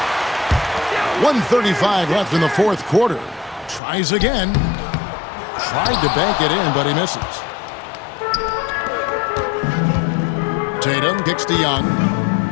1:35 left in the fourth quarter. Tries again. Tried to bank it in, but he misses. Tatum kicks to Young.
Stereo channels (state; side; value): drops out; right; at 3.8 s